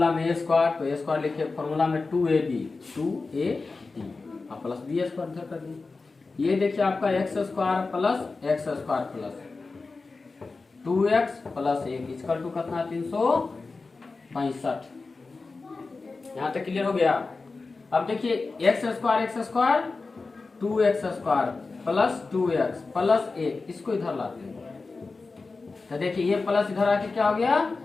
में a स्क्वायर, तो a स्क्वायर लिखे, फॉर्मूला में 2ab अब प्लस b² इधर कर दिए। ये देखिए आपका x² + x² + 2x + 1 equal to कितना, 365। यहाँ तक क्लियर हो गया। अब देखिए x² 2x² + 2x + 1, इसको इधर लाते हैं, तो देखिए ये प्लस इधर आके क्या हो गया,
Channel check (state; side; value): quieter; right; 3.9 dB